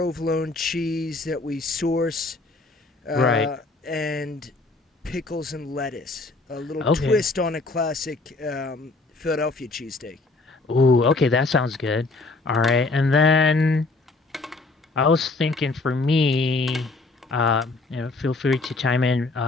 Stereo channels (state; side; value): quieter; right; 3.4 dB